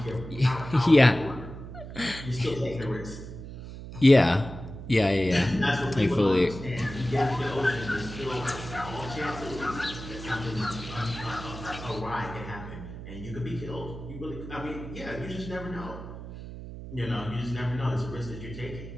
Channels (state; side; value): noise; right; hum, 11 dB below the sound